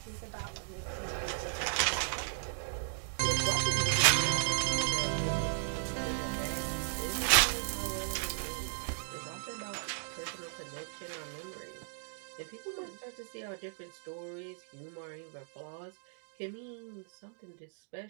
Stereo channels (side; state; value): left; silent; digital silence